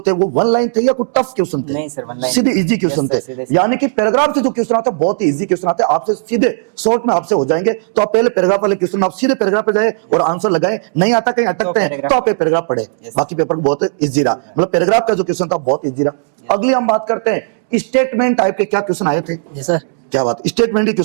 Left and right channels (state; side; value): silent; left; digital silence